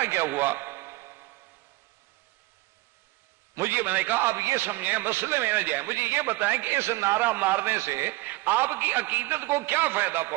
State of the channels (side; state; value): left; quieter; 20.3 dB